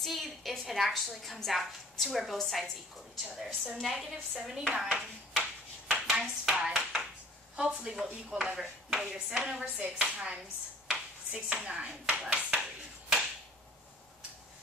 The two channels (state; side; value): normal; both; correlation 0.50